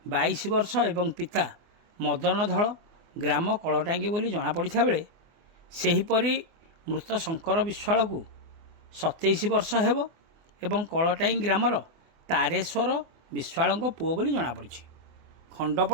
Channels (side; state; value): left; late; 24 ms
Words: 22 ବର୍ଷ ଏବଂ ପିତା ମଦନ ଧଳ ଗ୍ରାମ କଳଟାଙ୍ଗି ବୋଲି ଜଣାପଡ଼ିଥିବା ବେଳେ ସେହିପରି ମୃତ ଶଙ୍କର ବିଶ୍ୱାଳକୁ 27 ବର୍ଷ ହେବ ଏବଂ କଳଟାଙ୍ଗି ଗ୍ରାମର ତାରେଶ୍ୱର ବିଶ୍ୱାଳଙ୍କ ପୁଅ ବୋଲି ଜଣାପଡ଼ିଛି।